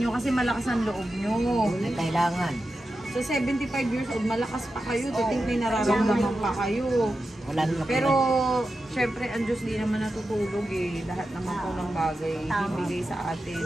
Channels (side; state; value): both; normal; correlation 0.91